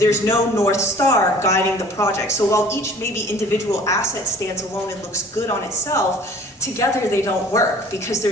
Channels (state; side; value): normal; both; correlation 0.50